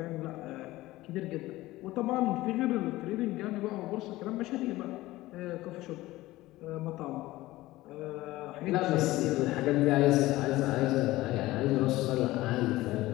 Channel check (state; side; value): quieter; right; 17.8 dB